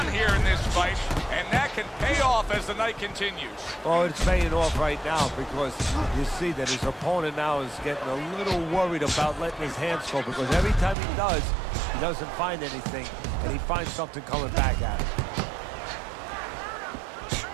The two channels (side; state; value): left; drops out; at 11.0 s